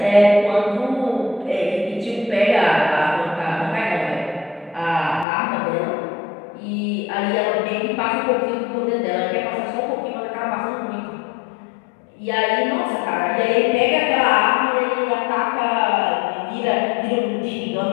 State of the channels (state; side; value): drops out; right; at 5.2 s